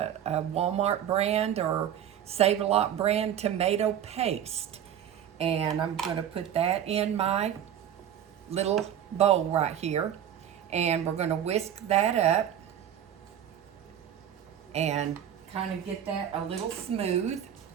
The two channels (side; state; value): left; quieter; 10.0 dB